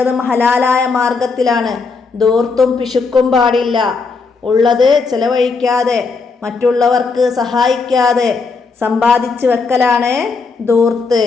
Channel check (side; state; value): right; quieter; 4.5 dB